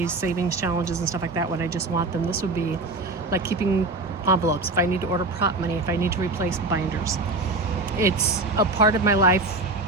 savings challenges and stuff like that when I just want them. This would be like keeping envelopes, if I need to order prop money, if I need to replace binders. It's a part of my life,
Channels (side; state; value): left; quieter; 3.2 dB